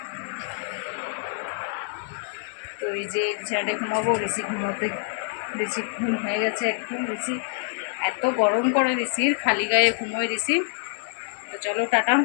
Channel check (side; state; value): right; silent; 58 dB below the other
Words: তো এই যে বিছানাটায় ঘুমাবো। ঋষি ঘুমোতে, ঋষি ঘুম হয়ে গেছে একদম। ঋষি এত গরম করে, ঋষির খালি গায়ে ঘুমোয় ঋষি। তো চলো টাটা।